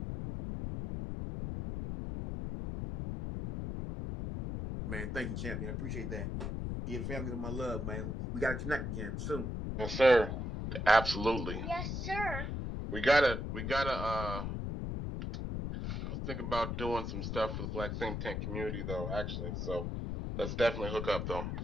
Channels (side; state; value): left; noise; rumble, 3 dB below the sound